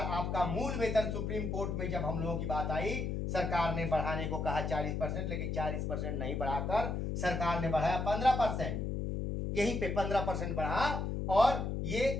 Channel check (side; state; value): left; noise; hum, 1 dB below the sound